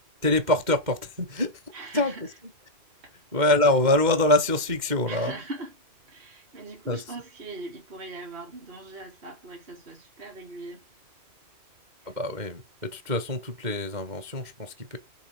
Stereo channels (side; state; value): left; late; 2.1 ms